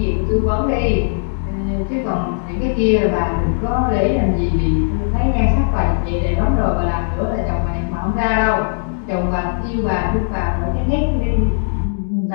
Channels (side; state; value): right; silent; digital silence